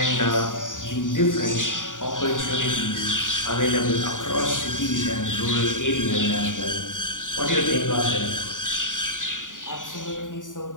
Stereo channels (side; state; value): right; late; 0.88 ms